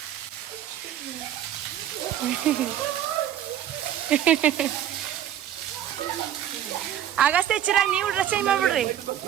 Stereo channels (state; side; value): quieter; left; 10.9 dB